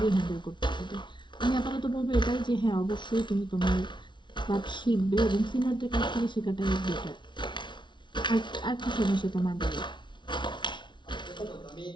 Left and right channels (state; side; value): late; right; 0.23 ms